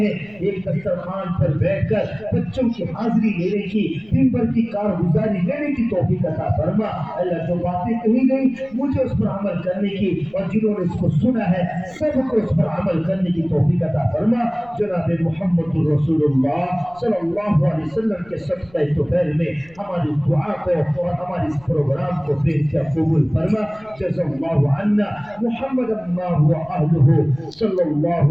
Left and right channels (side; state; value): left; noise; rumble, 27 dB below the sound